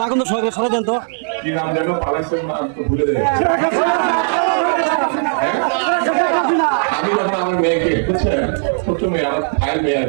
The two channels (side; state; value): left; silent; digital silence